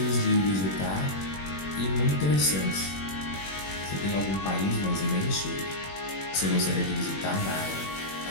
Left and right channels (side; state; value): right; late; 21 ms